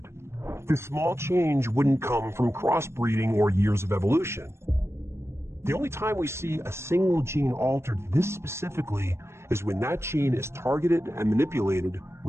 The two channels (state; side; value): late; left; 0.13 ms